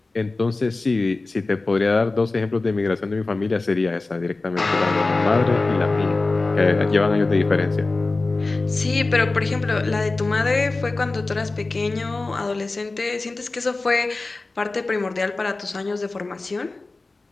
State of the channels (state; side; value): quieter; right; 3.4 dB